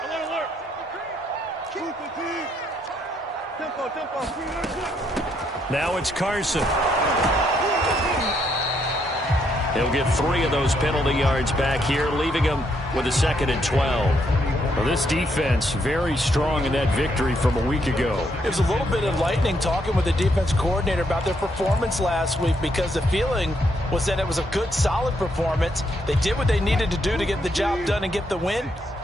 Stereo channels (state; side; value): normal; both; correlation 0.75